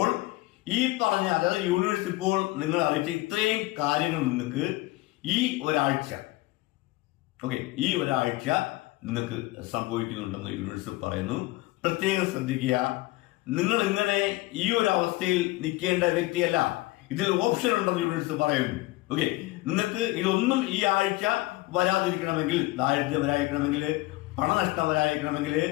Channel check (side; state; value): right; quieter; 20.0 dB